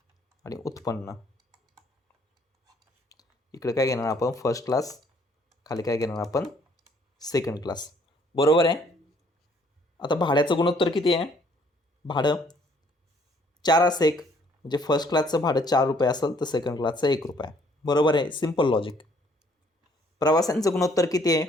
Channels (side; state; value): both; normal; correlation 0.63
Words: आणि उत्पन्न. इकडे काय घेणार आपण? First class. खाली काय घेणार आपण? Second class. बरोबर आहे. आता भाड्याचं गुणोत्तर किती आहे? भाडं 4 असं एक, म्हणजे फर्स्ट क्लासचं भाडं 4 रुपये असेल तर सेकंड क्लासचं 1 रुपया. बरोबर आहे. Simple logic. प्रवासांचं गुणोत्तर किती आहे?